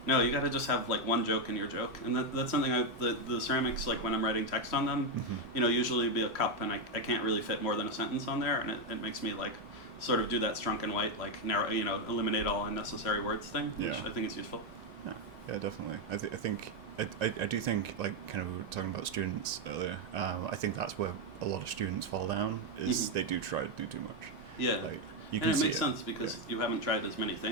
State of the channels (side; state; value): both; normal; correlation 0.04